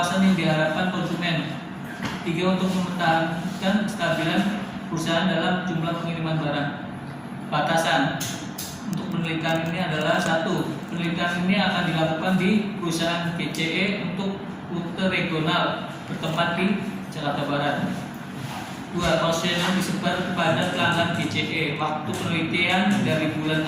yang diharapkan konsumen. 3. Untuk mempertahankan kestabilan perusahaan dalam jumlah pengiriman barang. Batasan untuk penelitian ini adalah 1. Penelitian ini akan dilakukan di perusahaan GCE untuk rute regional bertempat di Jakarta Barat. 2. Kuesioner disebar kepada pelanggan GCE. Waktu penelitian dari bulan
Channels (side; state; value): both; identical; correlation 1.00